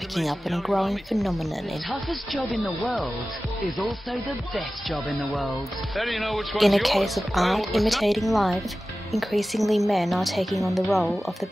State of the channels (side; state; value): both; normal; correlation 0.96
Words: up on a growing phenomenon The toughest job in the world is also the best job in the world. in a case of art imitating life. Increasingly men are taking on the role of the